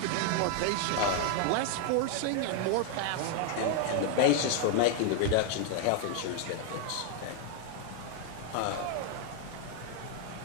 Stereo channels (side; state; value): both; different; correlation 0.00